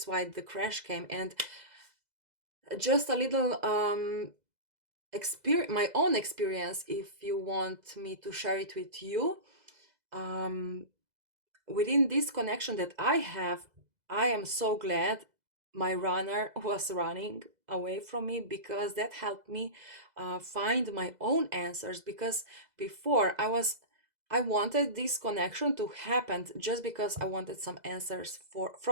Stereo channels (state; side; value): late; left; 2.0 ms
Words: why the crash came. And just a little my own experience, if you want me to share it with you. Within this connection that I have, I am so glad my runner was running away from me, because that helped me find my own answers. Because before I wanted this connection to happen just because I wanted some answers